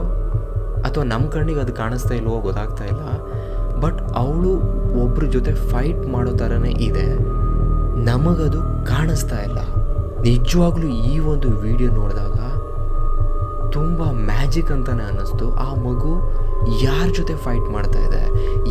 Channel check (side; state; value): both; identical; correlation 1.00